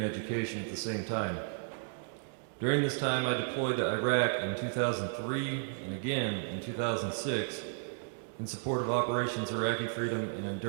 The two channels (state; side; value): silent; left; digital silence